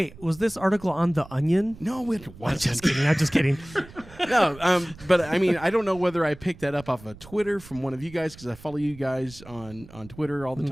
was this article on The Onion? No, it wasn't. I'm just kidding. No, but I mean, I don't know whether I picked that up off of Twitter from one of you guys, because I follow you guys on Twitter all the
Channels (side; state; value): right; noise; rumble, 19 dB below the sound